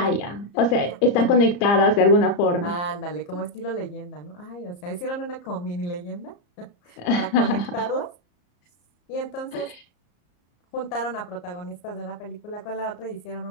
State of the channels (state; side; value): late; right; 34 ms